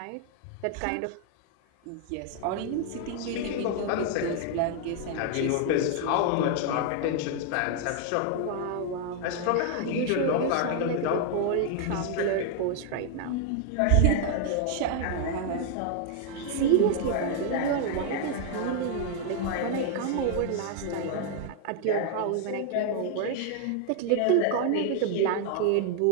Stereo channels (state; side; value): different; both; correlation 0.00